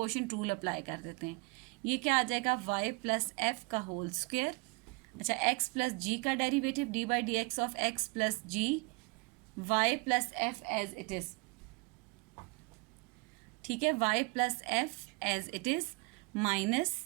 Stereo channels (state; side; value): quieter; left; 28.5 dB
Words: रूल अप्लाई कर देते हैं। ये क्या आ जाएगा, y प्लस एफ का होल स्क्वायर। अच्छा, x प्लस जी का derivative d by d x of x plus g y plus f as it is, ठीक है। y plus f as it is minus